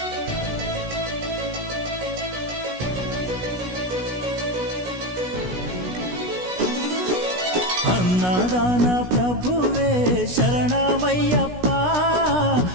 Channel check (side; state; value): left; late; 16 ms